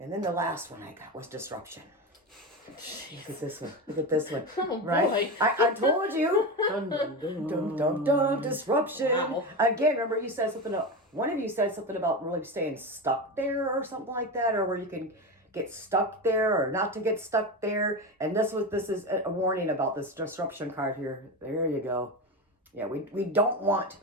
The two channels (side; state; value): both; normal; correlation 0.20